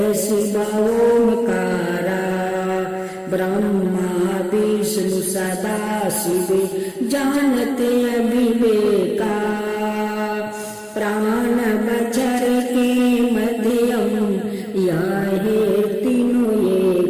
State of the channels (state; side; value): identical; both; correlation 1.00